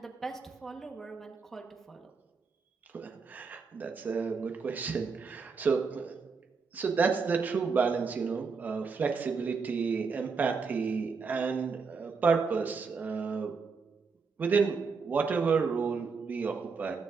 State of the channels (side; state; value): left; quieter; 5.0 dB